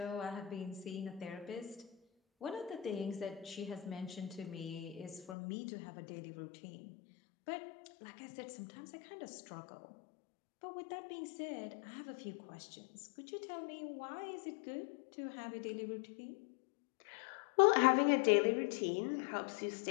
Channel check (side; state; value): right; drops out; at 5.4 s